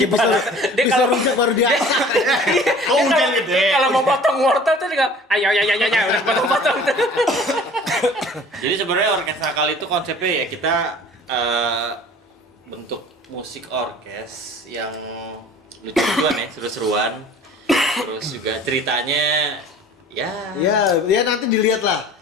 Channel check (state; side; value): normal; both; correlation 0.47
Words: bisa Dia bisa kalau- rujak baru dia. Kok hujan gede? Kalau mau potong wortel tuh dia ayo udah potong. Jadi sebenarnya orkes nakal itu konsepnya ya kita bentuk musik orkes yang lucu-lucuan ya, seru-seruan. Terus juga ceritanya ya Ya nanti dilihat lah.